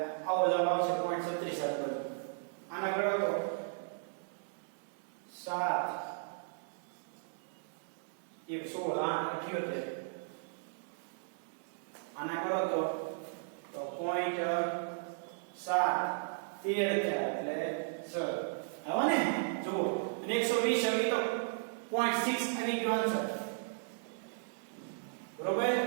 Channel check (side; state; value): left; silent; digital silence